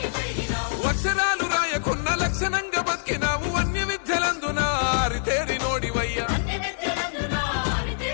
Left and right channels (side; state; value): right; silent; 62 dB below the other